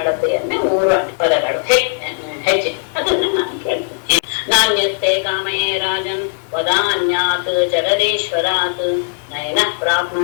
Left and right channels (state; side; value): silent; right; digital silence